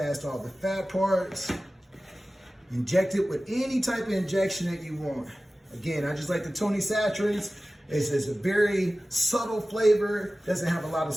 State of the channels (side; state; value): both; normal; correlation 0.96